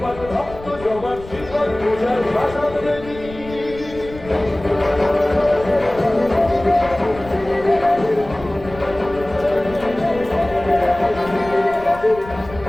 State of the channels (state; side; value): noise; left; rumble, 16 dB below the sound